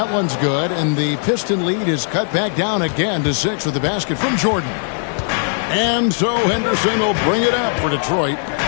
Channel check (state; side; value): silent; right; 62 dB below the other